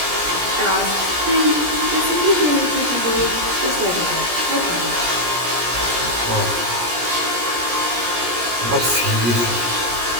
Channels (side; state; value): left; late; 17 ms